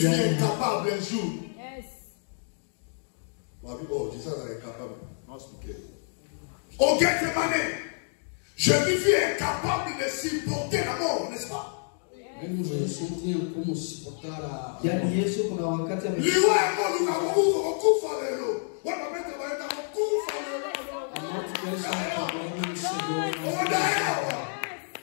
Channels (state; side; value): silent; right; digital silence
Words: fut incapable un jour. Oh, Jésus est incapable. Au Gethsemane, Jésus fut incapable de supporter la mort, n'est-ce pas? Mesmo Jesus não tinha como suportar a. yaani Yesu kuna wakati Liwa emo lukakufa lelo. Wana mete baenda kufa lelo. A morte que ele estava não chegou. Odaewa.